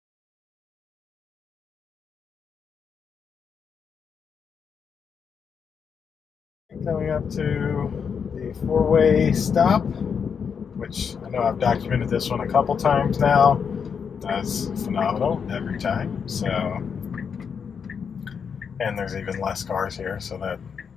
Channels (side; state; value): right; quieter; 6.6 dB